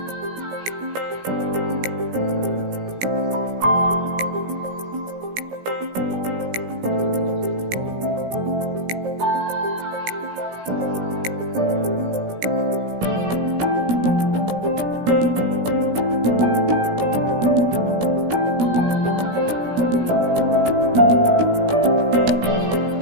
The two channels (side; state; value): left; late; 17 ms